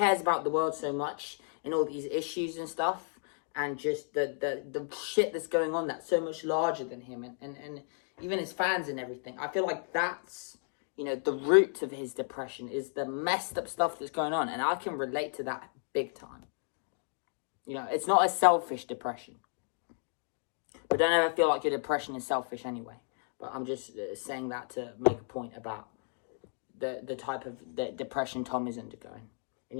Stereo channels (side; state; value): right; silent; 56 dB below the other